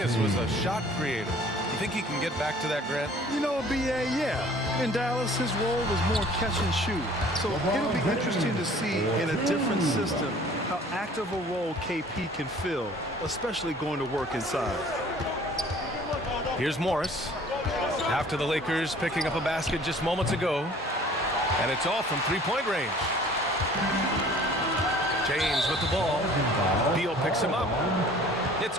was a shot creator. You think he can get back to that, Grant? You know, BA, yeah. In Dallas, his role was more catch and shoot. So it'll be interesting to see in a different system how active a role KP can fill, especially going to work inside. Here's Morris. After the Lakers picking up a basket just moments ago. And it's all from three-point range. James with the ball. Beal picks him up. It's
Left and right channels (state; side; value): normal; both; correlation 0.51